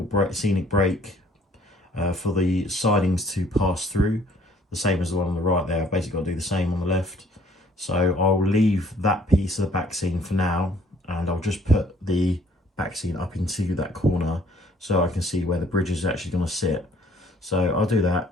scenic break for the sidings to pass through, the same as the one on the right there. I've basically got to do the same on the left. So I'll leave that piece of the back scene for now, and I'll just put the back scene up into that corner so I can see where the bridge is actually going to sit. So I'll do that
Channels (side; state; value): both; normal; correlation 0.59